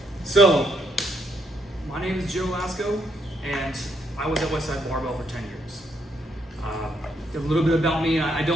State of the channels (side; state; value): both; normal; correlation 0.74